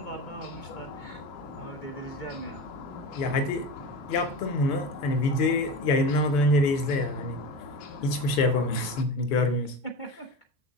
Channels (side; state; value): right; late; 2.5 ms